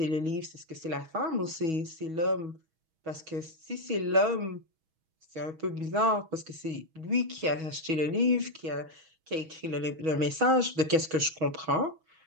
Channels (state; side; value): late; left; 6.2 ms